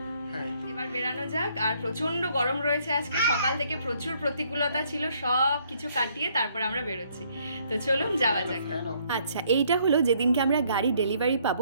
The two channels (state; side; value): inverted; both; correlation -0.67